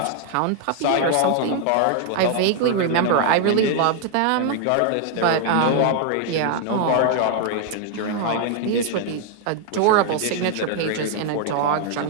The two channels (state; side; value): different; both; correlation 0.00